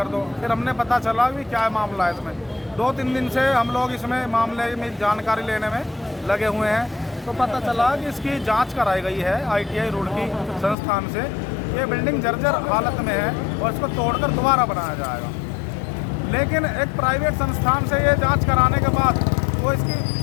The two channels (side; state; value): right; drops out; at 10.8 s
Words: दो। फिर हमने पता चला कि क्या मामला है इसमें। 2-3 दिन से हम लोग इसमें मामले में जानकारी लेने में लगे हुए हैं, तो पता चला कि इसकी जांच कराई गई है ITI रुड़की संस्थान से। ये बिल्डिंग जर्जर हालत में है और इसको तोड़कर दोबारा बनाया जाएगा। लेकिन एक प्राइवेट संस्थान से ये जांच कराने के बाद